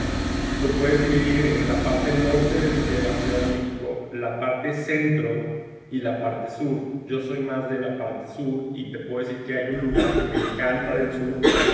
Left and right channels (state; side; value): identical; both; correlation 1.00